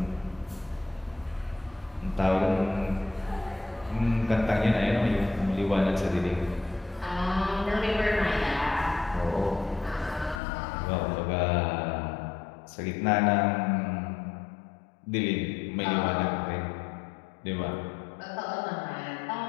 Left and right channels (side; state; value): right; drops out; at 10.4 s